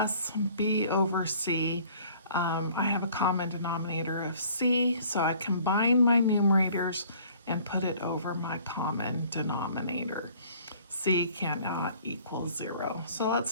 B over C, I have a common denominator of C, so I combine my numerators and put it over my common denominator. C cannot equal 0. So let's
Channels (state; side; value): inverted; both; correlation -0.54